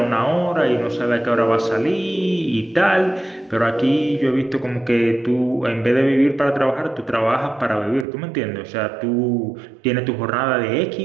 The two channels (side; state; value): left; drops out; at 8.1 s